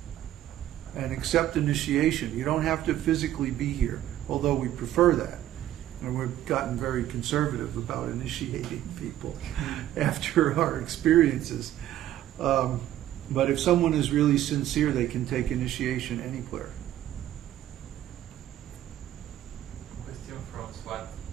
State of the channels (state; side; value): quieter; left; 12.7 dB